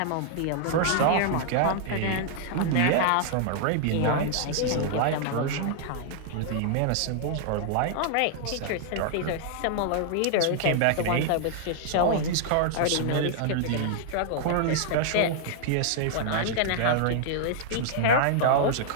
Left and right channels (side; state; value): both; different; correlation -0.01